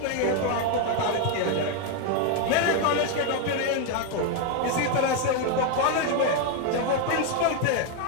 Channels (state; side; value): different; both; correlation 0.01